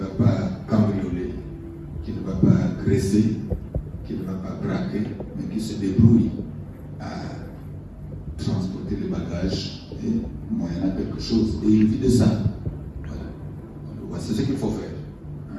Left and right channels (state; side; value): identical; both; correlation 1.00